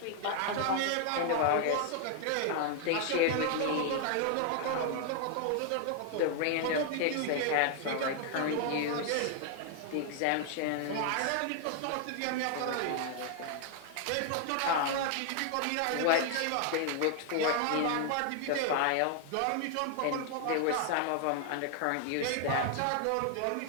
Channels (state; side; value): different; both; correlation 0.00